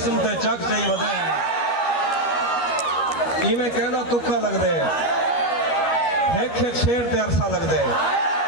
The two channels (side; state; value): right; late; 12 ms